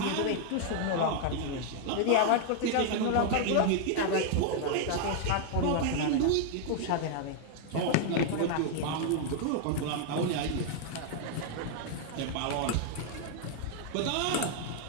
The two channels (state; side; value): different; both; correlation 0.00